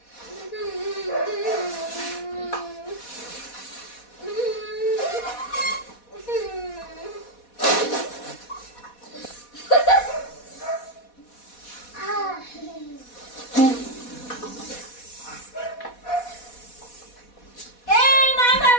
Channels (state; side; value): late; right; 4.1 ms